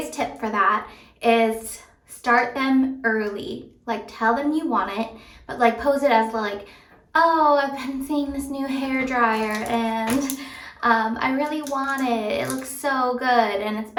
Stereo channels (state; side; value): identical; both; correlation 1.00